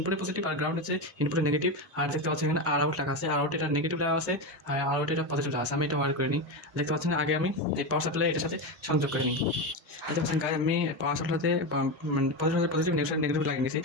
পজিটিভ, আর গ্রাউন্ড হচ্ছে ইনপুটে নেগেটিভ। আর দেখতে পাচ্ছেন এখানে আর আউট লেখা আছে, আর আউট এটা নেগেটিভ লেখা আছে, আর আউট এটা পজিটিভ লেখা আছে। আমি এটা ওয়ার করে নিই, দেখতে পাচ্ছেন। আগে আমি এই পাওয়ার সাপ্লাই এটার সাথে সংযোগ করে নিই। দেখতে পাচ্ছেন গায়ে আমি পাওয়ার সাপ্লাইতে মানে পজিটিভ নেগেটিভ লাগিয়ে নিয়েছি।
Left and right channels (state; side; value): normal; both; correlation 0.15